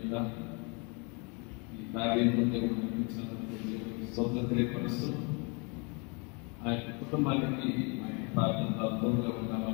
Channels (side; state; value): right; quieter; 32.9 dB